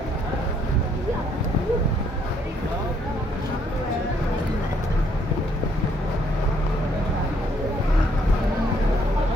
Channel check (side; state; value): both; normal; correlation 0.68